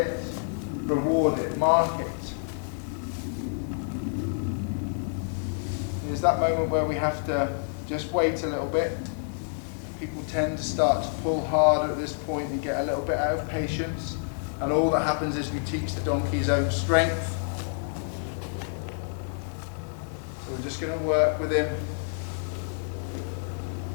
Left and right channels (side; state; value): right; silent; 59 dB below the other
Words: reward it, mark it. There's that moment where we have to just wait a little bit. People tend to start to pull harder at this point and get a little bit out of patience. And all that happens is we teach the donkey his own strength. So we're just going to work with him.